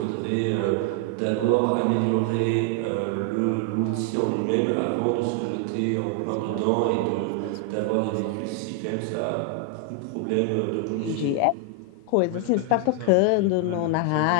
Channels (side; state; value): both; different; correlation 0.00